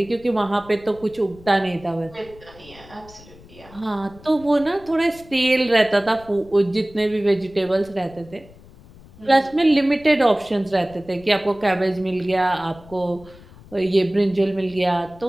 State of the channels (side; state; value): left; noise; rumble, 22 dB below the sound